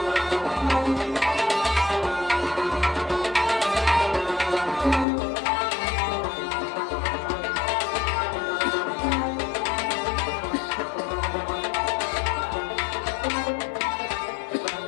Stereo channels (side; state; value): right; drops out; at 5.1 s